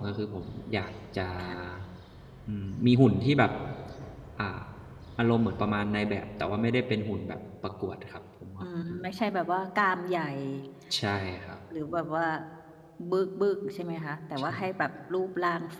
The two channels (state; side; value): identical; both; correlation 1.00